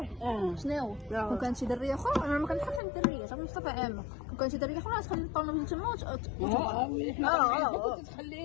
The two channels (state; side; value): drops out; right; at 2.8 s